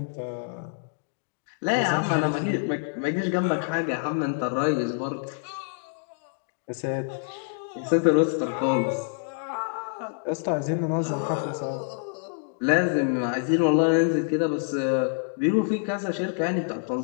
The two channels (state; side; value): silent; right; digital silence